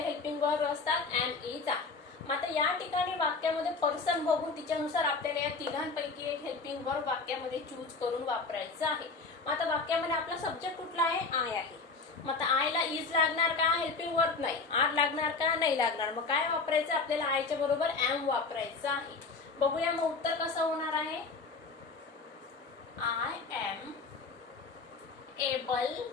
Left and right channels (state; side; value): quieter; right; 4.3 dB